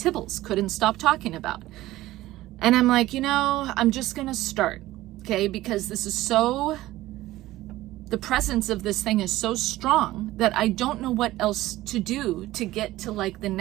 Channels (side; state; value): left; quieter; 16.4 dB